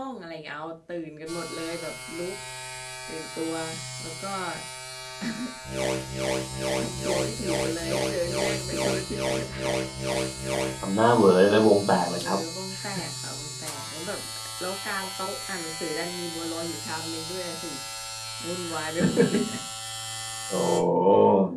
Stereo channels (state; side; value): identical; both; correlation 1.00